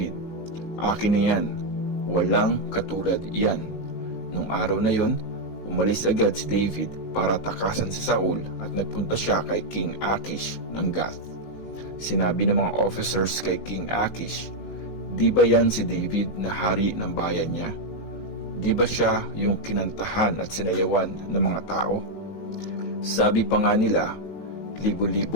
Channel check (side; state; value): right; late; 18 ms